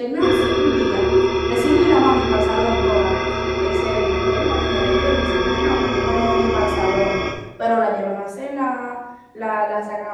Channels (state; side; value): identical; both; correlation 1.00